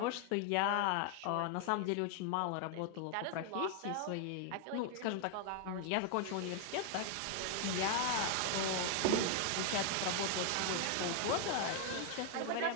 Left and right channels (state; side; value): different; both; correlation 0.00